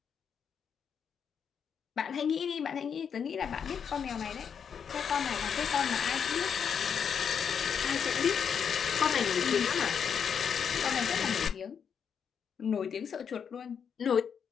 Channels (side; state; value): right; quieter; 7.2 dB